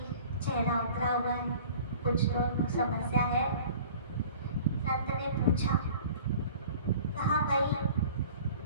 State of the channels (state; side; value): inverted; both; correlation -0.46